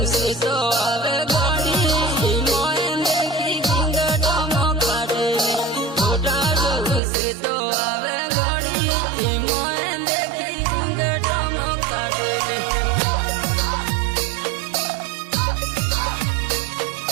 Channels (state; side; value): drops out; left; at 7.0 s